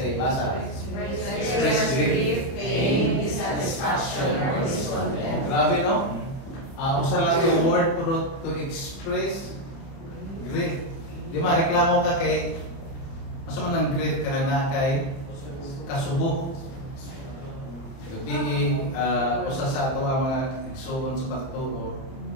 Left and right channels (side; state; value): right; late; 30 ms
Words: basa. Express grief, pain, dissatisfaction, or discontent. Grabe, no? Usa lang yung word to express grief. Di ba, reklamo ka kay mas man ang grief ka na kay kasubo. Gabi, usa sa ato ang mga igsoon sa pagtuo,